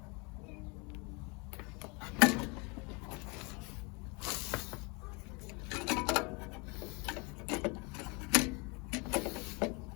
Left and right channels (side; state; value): right; quieter; 29.9 dB